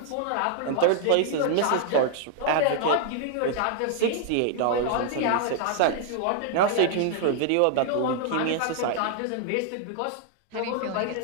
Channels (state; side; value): different; both; correlation 0.00